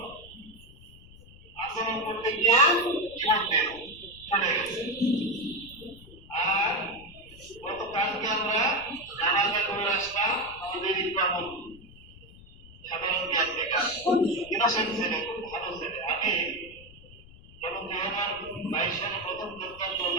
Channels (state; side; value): noise; left; rumble, 21 dB below the sound